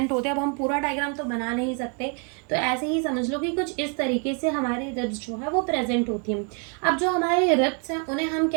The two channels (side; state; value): left; quieter; 37.6 dB